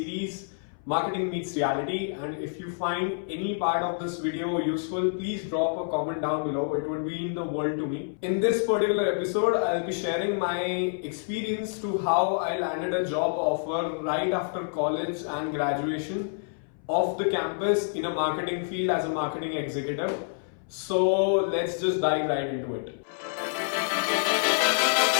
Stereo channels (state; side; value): silent; right; 58 dB below the other